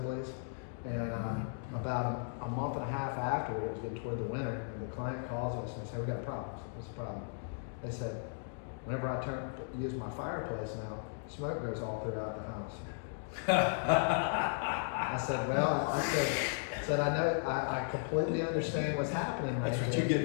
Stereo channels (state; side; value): silent; right; digital silence